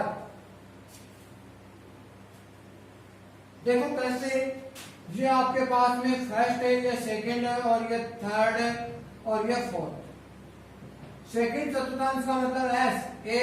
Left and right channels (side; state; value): both; identical; correlation 1.00